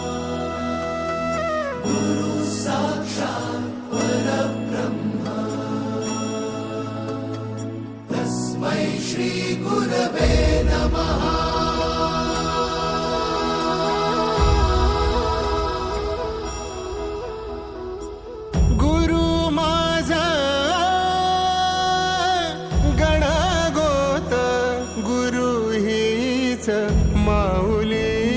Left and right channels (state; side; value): identical; both; correlation 1.00